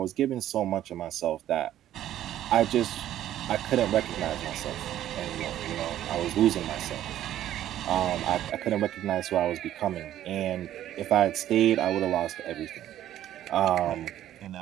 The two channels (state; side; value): quieter; left; 12.2 dB